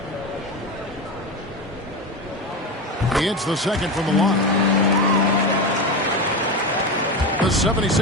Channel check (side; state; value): both; normal; correlation 0.20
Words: He hits the second from the line. The